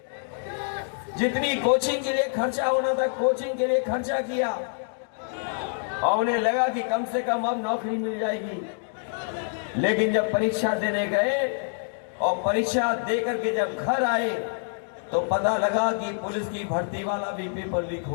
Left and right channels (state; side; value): silent; right; digital silence